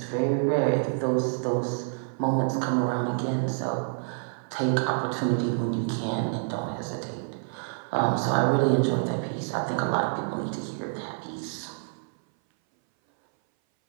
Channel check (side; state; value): left; silent; 58 dB below the other